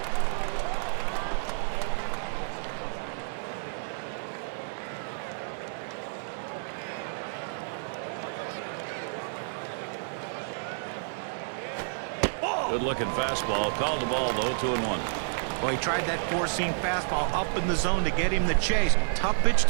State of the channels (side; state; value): left; silent; digital silence